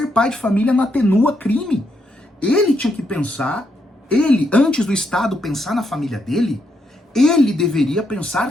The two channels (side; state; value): both; normal; correlation 0.78